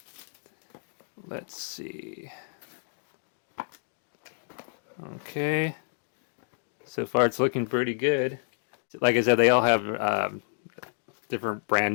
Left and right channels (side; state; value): right; silent; digital silence